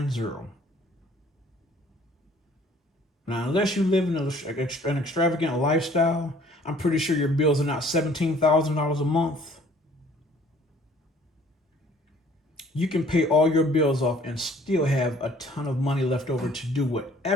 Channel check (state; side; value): normal; both; correlation 0.55